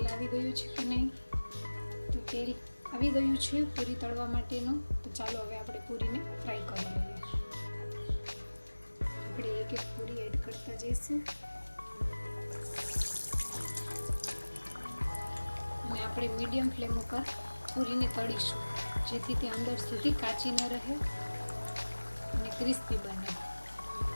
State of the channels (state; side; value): inverted; both; correlation -1.00